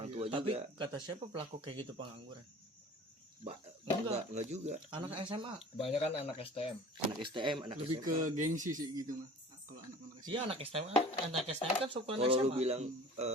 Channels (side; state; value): both; normal; correlation 0.43